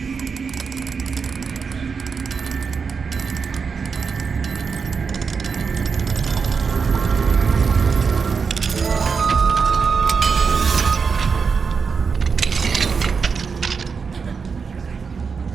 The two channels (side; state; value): left; quieter; 5.5 dB